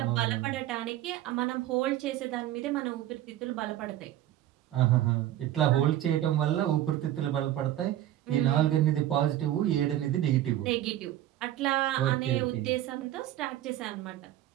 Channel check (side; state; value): left; quieter; 13.1 dB